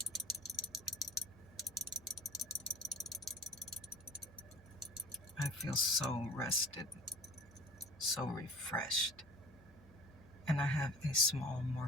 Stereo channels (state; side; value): normal; both; correlation 0.44